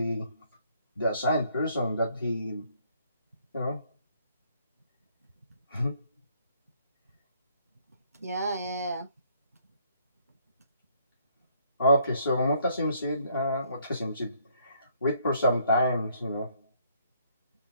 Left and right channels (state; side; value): inverted; both; correlation -0.67